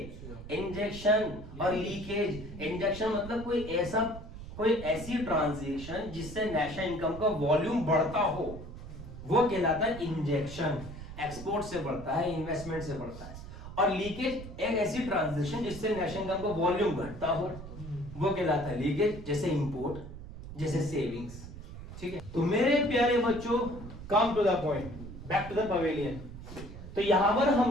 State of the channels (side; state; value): right; noise; rumble, 12 dB below the sound